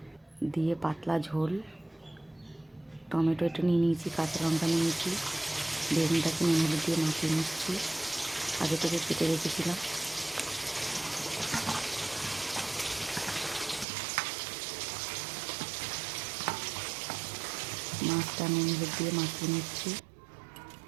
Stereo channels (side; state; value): left; drops out; at 13.9 s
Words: দিয়ে পাতলা ঝোল। টমেটো একটু নিয়ে নিয়েছি, কাঁচা লঙ্কা নিয়ে নিয়েছি, বেগুনটাকে নুন হলুদ দিয়ে মাখিয়ে নিচ্ছি, আগে থেকে কেটে রেখেছিলাম। মাছটা নুন হলুদ দিয়ে মাখিয়ে নিচ্ছি।